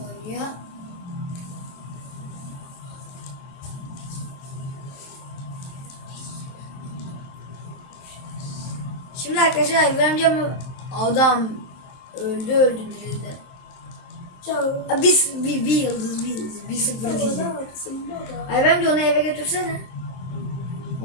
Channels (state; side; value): late; right; 23 ms